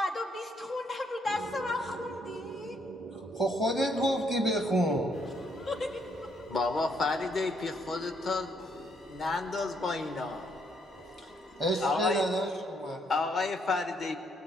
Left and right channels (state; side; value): normal; both; correlation 0.71